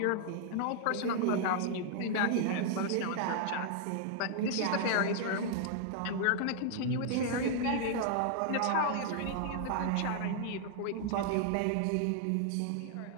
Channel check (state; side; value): different; both; correlation 0.00